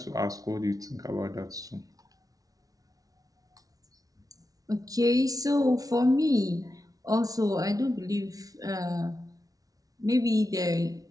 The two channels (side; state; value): left; late; 0.18 ms